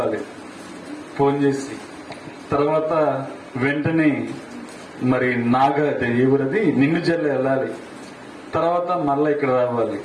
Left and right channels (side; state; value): both; identical; correlation 1.00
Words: ఫోన్ చేసి, తర్వాత వెంటనే మరి ఎవరది నిన్ను జల్లు వెళ్ళాలి, తర్వాత మళ్ళా ఇక్కడ రావాలి.